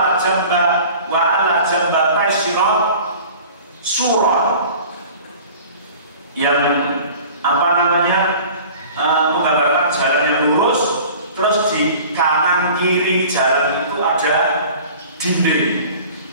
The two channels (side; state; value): both; inverted; correlation -0.44